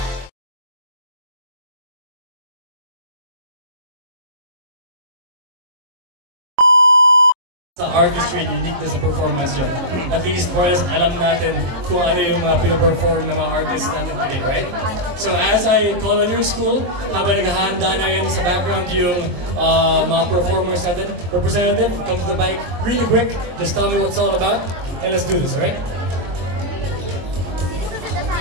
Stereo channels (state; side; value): late; left; 23 ms